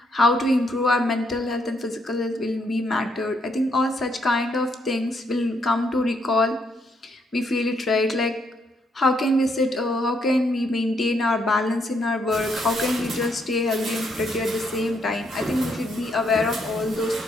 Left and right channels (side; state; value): both; normal; correlation 0.74